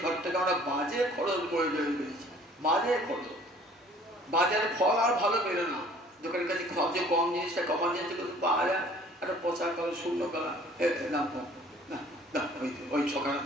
খরচটাকে আমরা বাজে খরচ করে ফেলেছি। বাজে খরচ, বাজারে ফল আর ভালো বেরো না, দোকানের কাছে সবচেয়ে কম জিনিসটা কমার জিনিসটা কিন্তু পাওয়া যায়, একটা পচা কালো শূন্য কালা দাম কম না, না ওই সকালে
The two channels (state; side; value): normal; both; correlation 0.53